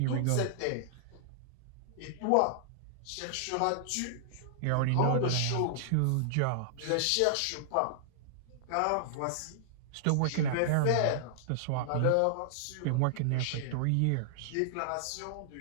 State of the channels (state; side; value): different; both; correlation -0.01